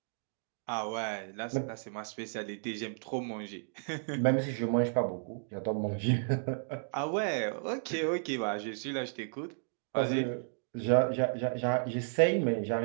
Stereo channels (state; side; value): silent; left; digital silence